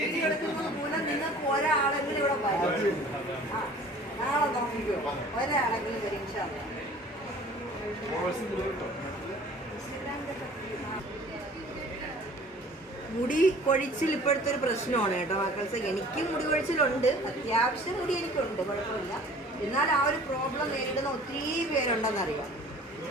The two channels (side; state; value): both; normal; correlation 0.48